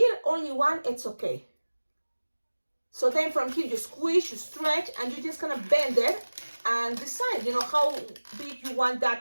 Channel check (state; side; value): inverted; both; correlation -1.00